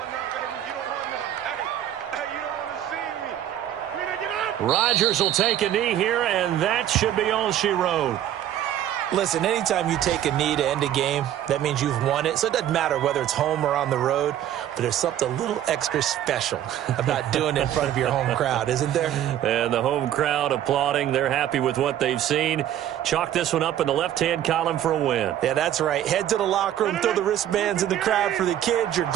Rodgers will take a knee here, and that should be all she wrote. Listen, anytime you take a knee to end a game, that means you've won it. So it doesn't matter whether it's home or on the road, but there's something a little extra special about doing it in front of your home crowd, isn't there? And the home crowd applauding. They're happy with what they've seen. Chalk this one up in the left-hand column for a win. Yeah, that's right. Head to the locker room, throw the wristbands in the crowd for the kids, your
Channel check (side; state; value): left; quieter; 11.5 dB